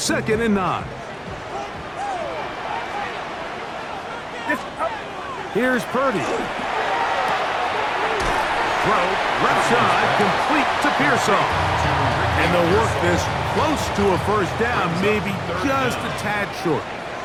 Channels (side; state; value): both; identical; correlation 1.00